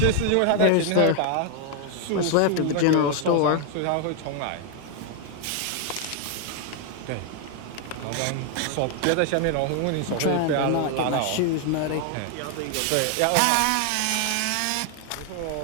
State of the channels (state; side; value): different; both; correlation 0.00